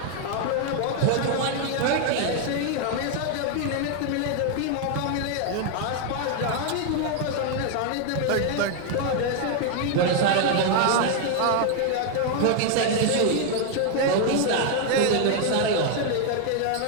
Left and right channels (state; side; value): different; both; correlation 0.00